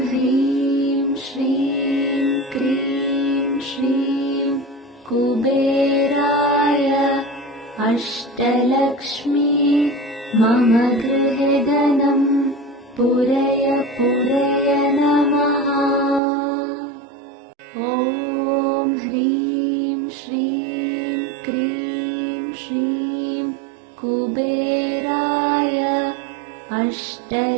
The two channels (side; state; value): left; drops out; at 16.2 s